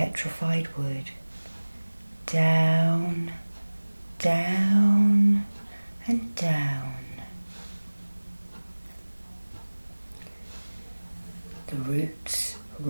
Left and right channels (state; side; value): inverted; both; correlation -1.00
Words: wood. Down, down, and down. The roots